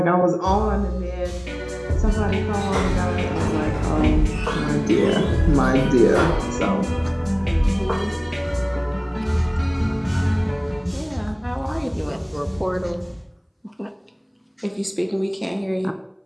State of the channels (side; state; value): both; identical; correlation 1.00